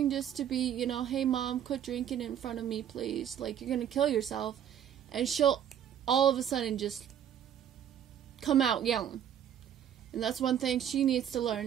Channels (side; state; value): left; quieter; 9.6 dB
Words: just to be, hey mom, quit drinking in front of me, please. Like, you're gonna kill yourself. And she'll all of a sudden just come out yelling. And that's one thing she needs to